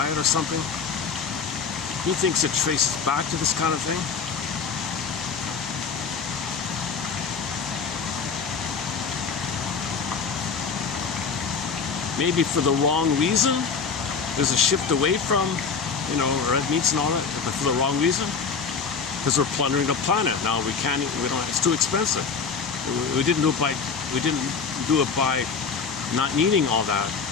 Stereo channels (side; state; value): right; quieter; 5.5 dB